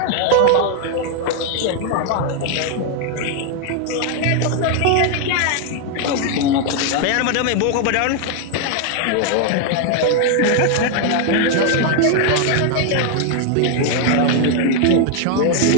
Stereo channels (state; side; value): different; both; correlation 0.00